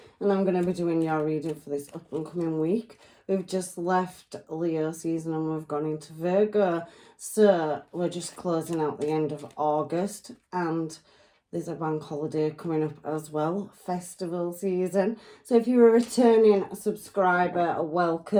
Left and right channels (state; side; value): identical; both; correlation 1.00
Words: and I'm going to be doing your reading for this up and coming week. We've just left Leo season and we've gone into Virgo, so we're just closing out the end of August and there's a bank holiday coming up as well, festival season. So if you're a returning subscriber,